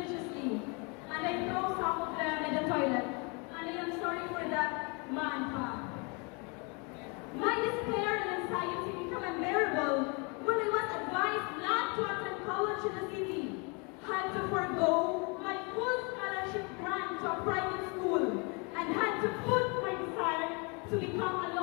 and I throw some of them in the toilet, and I am sorry for that, man. My despair and anxiety became unbearable when I was advised not to attend college in the city, had to forego my full scholarship grant to a private school, and had to put my desire to become a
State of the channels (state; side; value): quieter; right; 32.1 dB